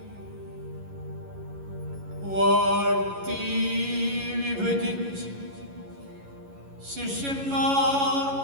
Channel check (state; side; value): late; left; 11 ms